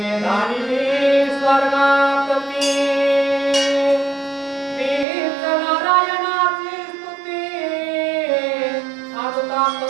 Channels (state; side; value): drops out; left; at 5.1 s